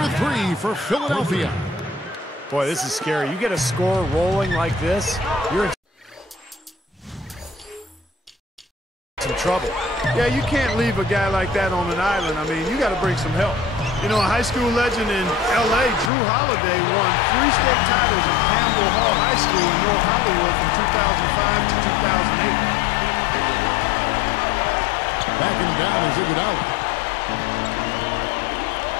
3 for Philadelphia. Boy, this is scary. You get a score rolling like this, you're in some trouble. Yeah, you can't leave a guy like that on an island. I mean, you got to bring some help. You know, a high school legend in L.A., Drew Holiday, won 3 state titles at Campbell Hall High School in North Hollywood from 2005 to 2008. Backing him down is Iguodala.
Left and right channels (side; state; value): right; drops out; at 16.1 s